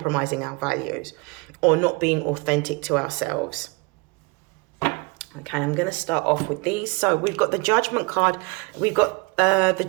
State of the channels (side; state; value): left; quieter; 29.1 dB